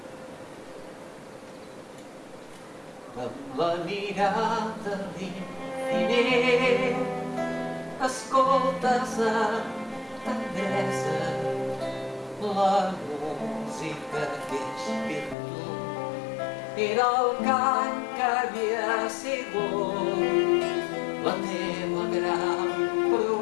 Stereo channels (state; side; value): drops out; right; at 15.4 s